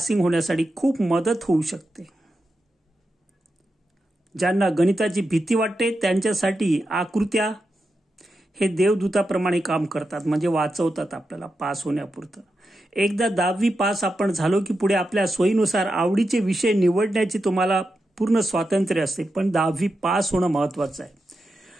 होण्यासाठी खूप मदत होऊ शकते. ज्यांना गणिताची भीती वाटते त्यांच्यासाठी आकृत्या हे देवदूताप्रमाणे काम करतात, म्हणजे वाचवतात आपल्याला पास होण्यापुरतं. एकदा 10वी पास आपण झालो की पुढे आपल्या सोयीनुसार आवडीचे विषय निवडण्याची तुम्हाला पूर्ण स्वातंत्र्य असते, पण 10वी पास होणं महत्त्वाचं आहे.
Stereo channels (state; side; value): normal; both; correlation 0.88